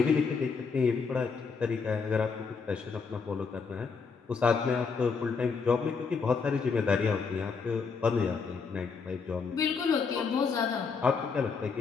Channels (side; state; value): right; quieter; 5.2 dB